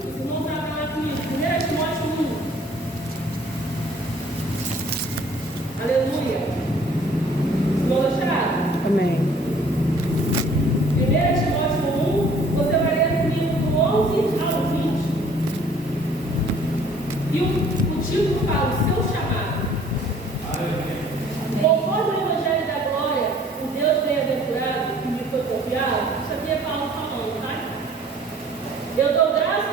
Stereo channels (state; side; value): normal; both; correlation 0.55